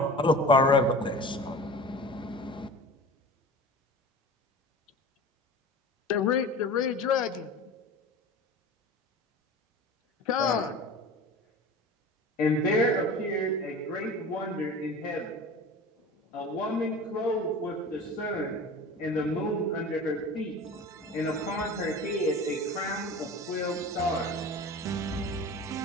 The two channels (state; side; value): normal; both; correlation 0.36